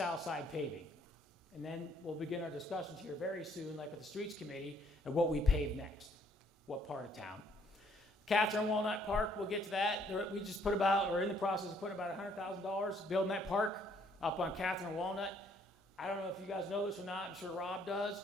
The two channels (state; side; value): normal; both; correlation 0.65